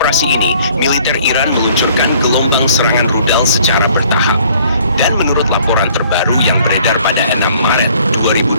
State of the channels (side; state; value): both; inverted; correlation -0.58